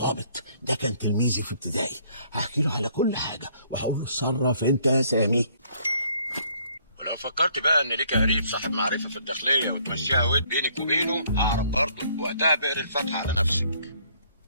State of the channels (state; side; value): inverted; both; correlation -0.64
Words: ده، كان تلميذي في ابتدائي. هحكي له على كل حاجة وهقول له اتصرف انت يا سامي. ولو فكرت بقى إن ليك قريب صاحب معرفة في الداخلية وتمشيها ود بينك وبينه، ههرب برضه، وقتها بقري الفتحة على نفسك.